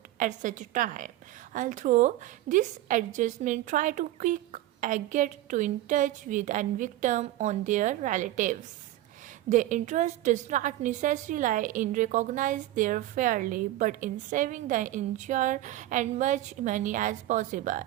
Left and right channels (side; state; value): left; quieter; 15.0 dB